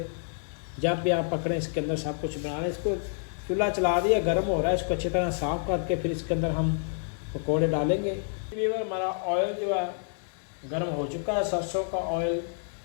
जब भी आप पकड़ें इसके अंदर सब कुछ बनाना। इसको चूल्हा चला दिया, गर्म हो रहा है, इसको अच्छी तरह साफ़ करके फिर इसके अंदर हम पकोड़े डालेंगे। हमारा ऑयल जो है गर्म हो चुका है, सरसों का ऑयल।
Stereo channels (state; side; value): silent; right; digital silence